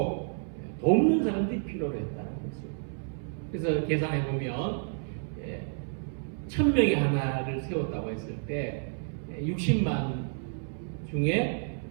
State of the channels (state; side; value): silent; left; 58 dB below the other